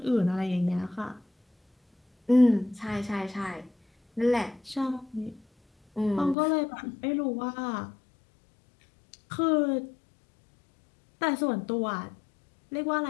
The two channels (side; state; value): right; drops out; at 6.4 s